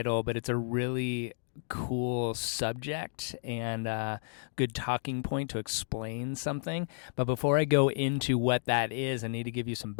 but it's a really cool subject and a good talking point to explain something. But before I go into what that is, I need to give you some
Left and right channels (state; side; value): silent; right; digital silence